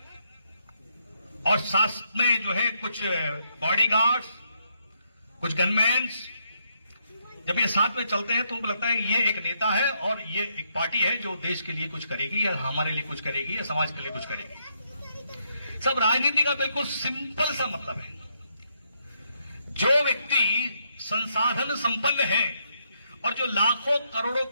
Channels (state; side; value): inverted; both; correlation -0.77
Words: और साथ में जो है कुछ बॉडीगार्ड्स, कुछ गनमैन्स, जब ये साथ में चलते हैं तो उनको लगता है कि ये एक नेता है और ये एक पार्टी है जो देश के लिए कुछ करेगी या हमारे लिए कुछ करेगी या समाज के लिए कुछ करेगी। सब राजनीति का बिल्कुल सिंपल सा मतलब है। जो व्यक्ति संसाधन संपन्न है और जो लाखों करोड़ों